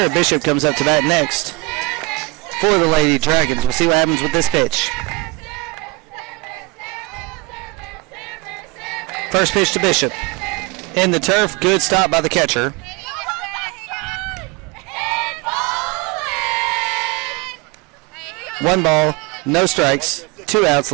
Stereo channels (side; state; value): left; quieter; 23.2 dB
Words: Bishop comes up to bat next for the Lady Dragons. We'll see what happens with this pitch. First pitch to Bishop. In the turf, good stop by the catcher. One ball, no strikes, 2 outs.